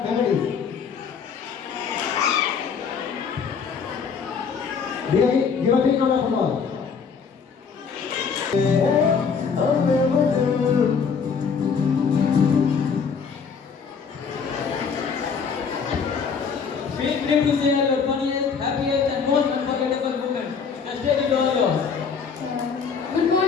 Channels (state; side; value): quieter; right; 6.0 dB